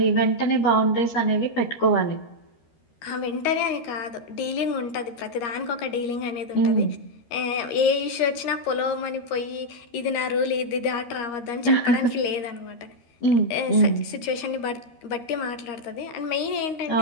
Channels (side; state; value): right; late; 13 ms